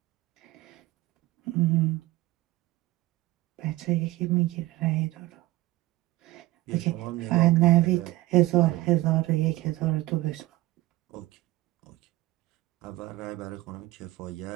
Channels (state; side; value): quieter; left; 18.3 dB